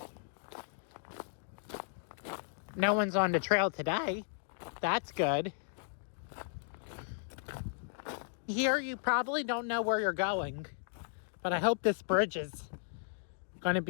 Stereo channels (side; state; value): right; silent; digital silence